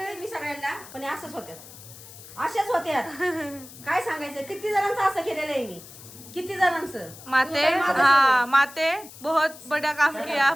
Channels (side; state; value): left; noise; hiss, 17 dB below the sound